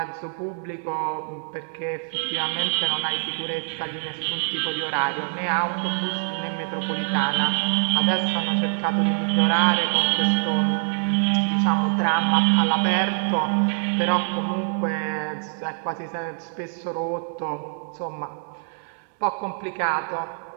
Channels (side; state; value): left; silent; 59 dB below the other